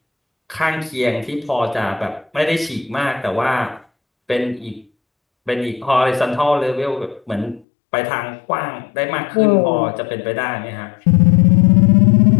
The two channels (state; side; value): drops out; right; at 7.7 s